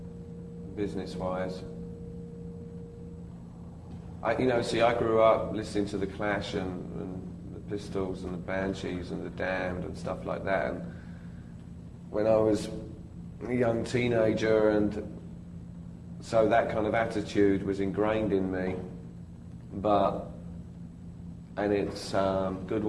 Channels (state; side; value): identical; both; correlation 1.00